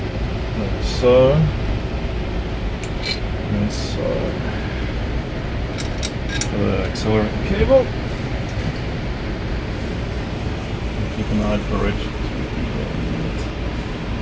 Like so. And so. The accelerator cable. Keep an eye for it.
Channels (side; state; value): both; identical; correlation 1.00